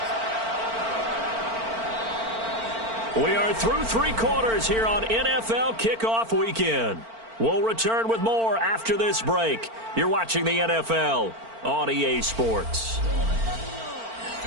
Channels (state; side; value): late; left; 4.4 ms